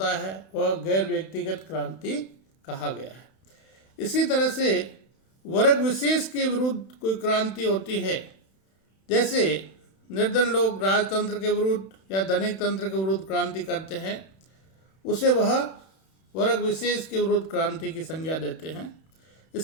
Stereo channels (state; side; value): late; right; 31 ms